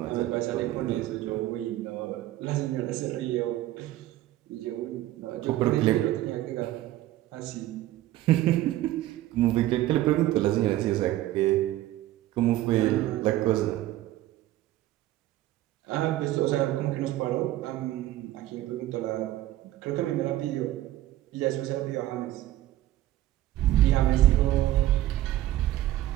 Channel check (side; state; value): left; quieter; 14.8 dB